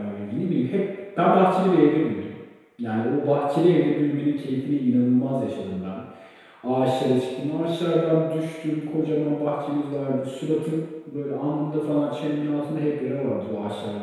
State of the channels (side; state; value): both; identical; correlation 1.00